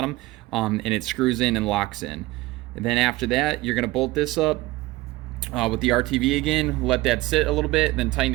and it screws in and locks in. And then after that, you're going to bolt this up with the RTV again, let that sit a little bit, then tighten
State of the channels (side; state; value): left; quieter; 19.2 dB